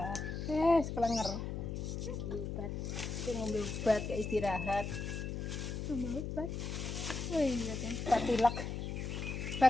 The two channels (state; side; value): noise; left; hum, 4 dB below the sound